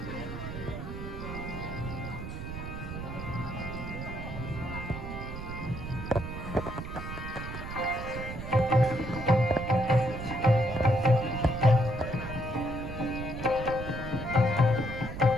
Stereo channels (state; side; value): noise; right; rumble, 8 dB below the sound